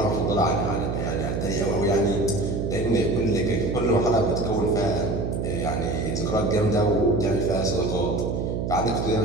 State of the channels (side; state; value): right; noise; hum, 1 dB below the sound